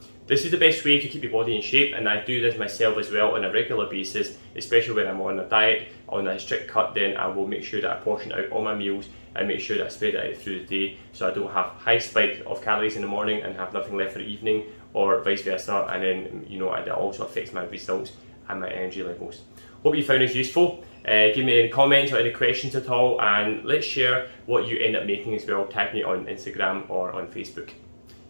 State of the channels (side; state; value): both; inverted; correlation -1.00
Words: This is the best way to keep your body in shape, and I do this myself as well on a regular basis, especially when I'm on a diet, on a strict cut. Then I will make sure that I portion out all my meals and make sure that I spread it out through the day, so I don't have high spike of calories in the morning and have nothing left for the evening, or vice versa, and then it also affects my results and my energy levels. Hope you found this useful. Give me any comments or any questions at all, and let's share what you end up making as well. Tag me on Instagram or on Facebook.